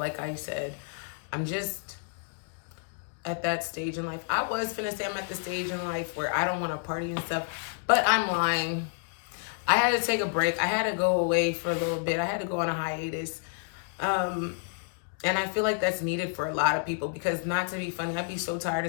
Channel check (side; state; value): right; silent; digital silence